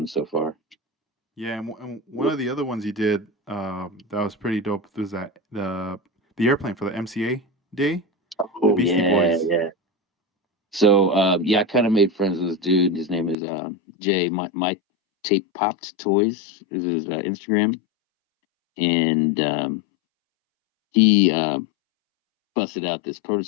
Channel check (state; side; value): drops out; right; at 13.4 s